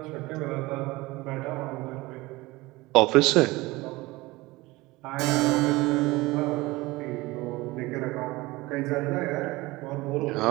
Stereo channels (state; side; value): quieter; left; 20.9 dB